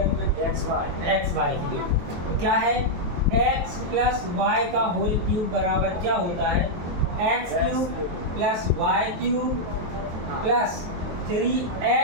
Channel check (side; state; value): left; late; 23 ms